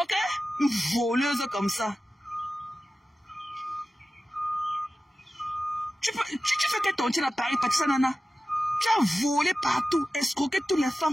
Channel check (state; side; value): normal; both; correlation 0.94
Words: Ok? Une voleuse comme ça. Tu fais que ton tien à Paris, Patricia Nana. Tu as volé partout, escroqué toutes les